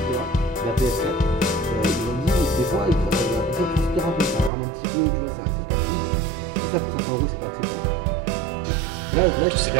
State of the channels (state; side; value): drops out; left; at 4.5 s